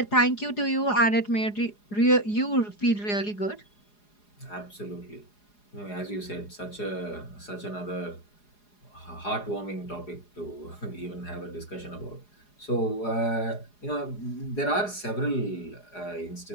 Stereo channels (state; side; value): late; right; 4.8 ms